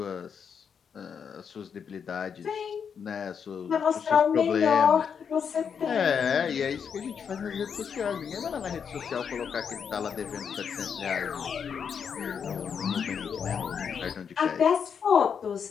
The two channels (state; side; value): quieter; right; 7.0 dB